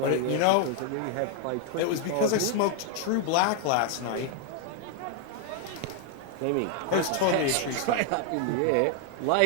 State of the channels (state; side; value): different; both; correlation 0.00